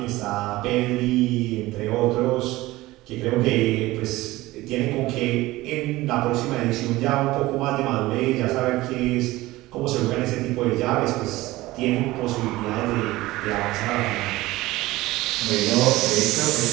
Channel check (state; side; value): quieter; left; 18.5 dB